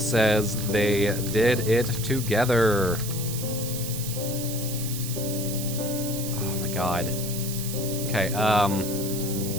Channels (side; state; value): right; noise; hiss, 7 dB below the sound